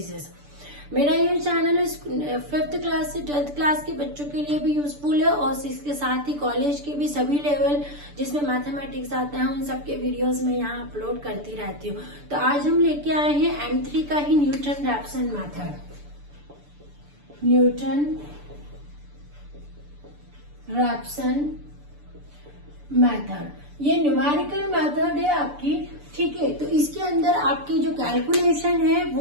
मेरा ये channel 5th class से 12th class के बच्चों के लिए भी यूजफुल है और इसके साथ ही कॉलेज के भी सभी लेवल जिसमें मैथमेटिक्स आता है उन सबके वीडियोस में यहाँ अपलोड करती रहती हूँ। तो आज हम लेके आए हैं M3 का ही Newton Raphson method. Newton Raphson method ये न्यूमेरिकल मेथड है आपकी, ठीक है। तो इसके अंदर आपकी जो कैलकुलेशन है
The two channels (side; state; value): left; late; 6.9 ms